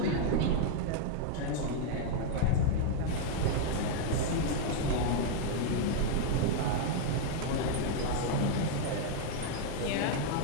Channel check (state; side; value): different; both; correlation -0.01